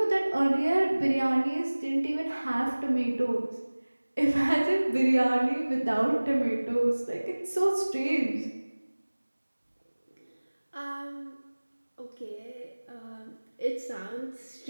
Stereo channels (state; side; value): inverted; both; correlation -1.00